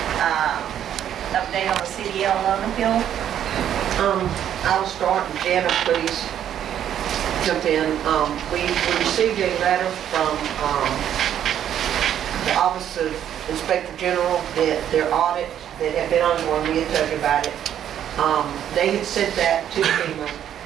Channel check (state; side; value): quieter; left; 10.2 dB